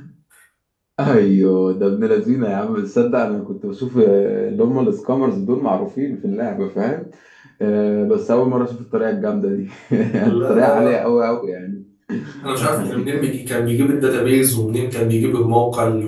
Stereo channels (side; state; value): both; identical; correlation 1.00